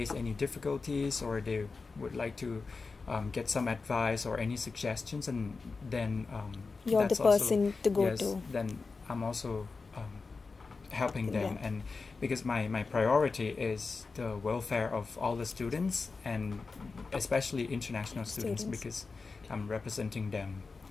any difficulties, or they would like to get some advice or any suggestions, and then You're the that's also- person to go yes, to. then I'm also helping them. Yeah. And because my priority is the welfare of all the students, and especially international students, because I'm representing them.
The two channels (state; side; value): quieter; right; 4.3 dB